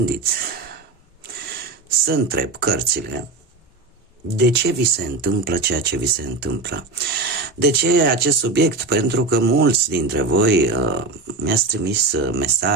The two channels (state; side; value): quieter; left; 3.7 dB